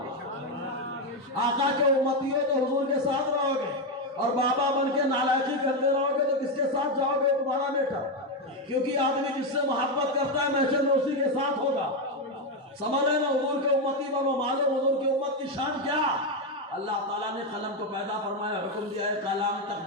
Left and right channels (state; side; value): normal; both; correlation 0.07